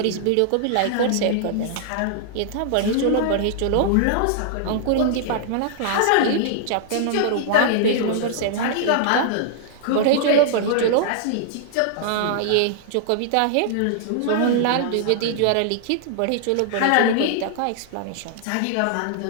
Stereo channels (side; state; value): both; different; correlation -0.01